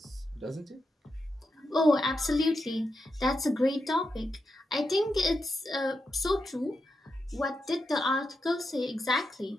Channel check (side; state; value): both; normal; correlation 0.86